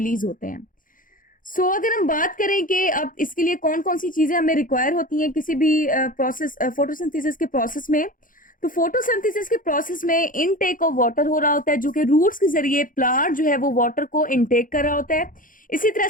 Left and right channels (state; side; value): late; right; 0.39 ms